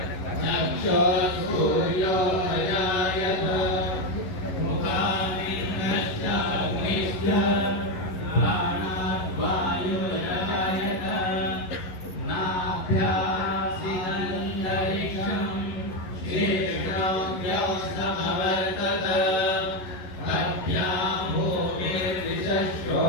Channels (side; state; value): right; late; 11 ms